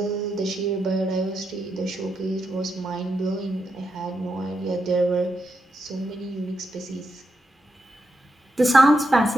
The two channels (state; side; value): normal; both; correlation 0.84